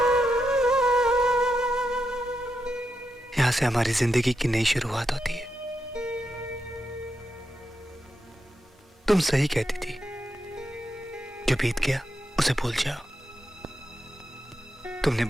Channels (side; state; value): both; normal; correlation 0.85